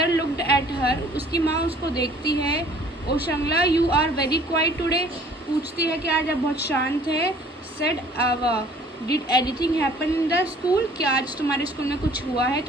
looked at her. उसकी माँ उसको देखती है। Oshangla you are very quiet today. पूछती है कि आज आप बहुत शांत है। सेड आवा did anything happen in the school. क्या आज तुम्हारे स्कूल में कुछ हुआ है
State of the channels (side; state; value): both; normal; correlation 0.55